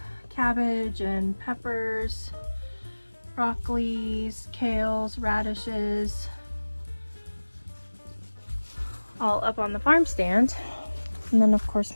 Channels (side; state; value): both; inverted; correlation -1.00